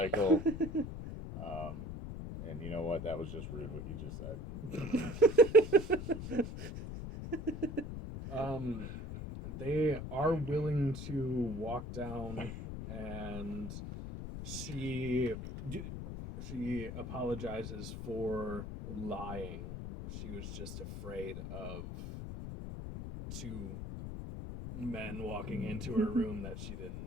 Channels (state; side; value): noise; left; rumble, 7 dB below the sound